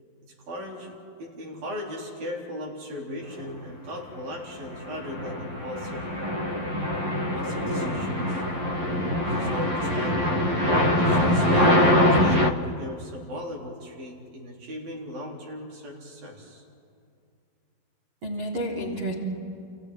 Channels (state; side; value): late; left; 11 ms